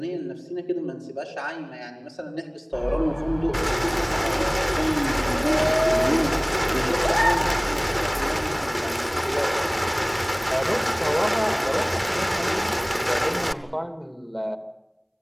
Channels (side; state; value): both; identical; correlation 1.00